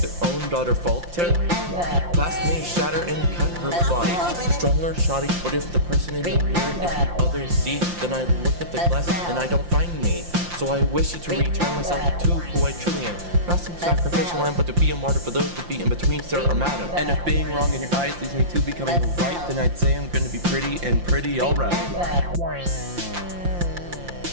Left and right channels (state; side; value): late; left; 5.7 ms